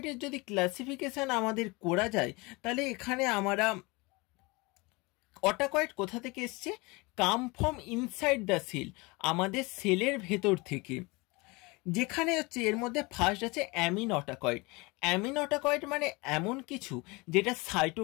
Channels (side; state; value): right; quieter; 25.5 dB